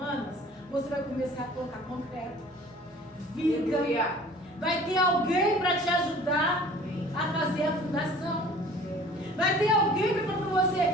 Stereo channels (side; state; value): both; normal; correlation 0.48